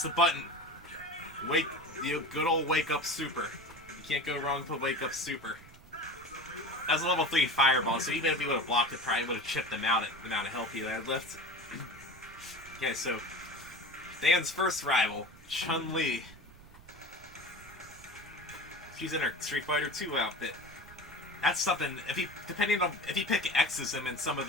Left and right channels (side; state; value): right; noise; rumble, 21 dB below the sound